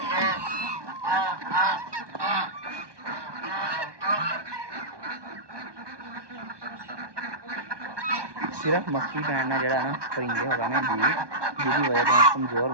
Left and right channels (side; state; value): left; late; 1.2 ms